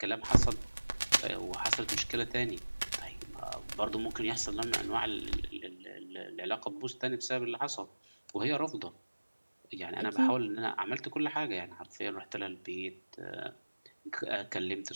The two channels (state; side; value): inverted; both; correlation -1.00